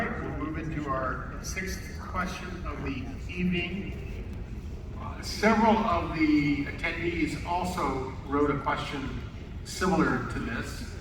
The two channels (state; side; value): identical; both; correlation 1.00